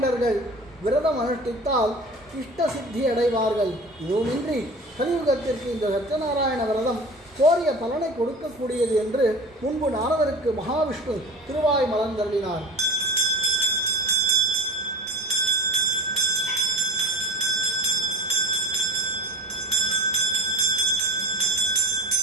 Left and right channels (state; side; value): normal; both; correlation 0.37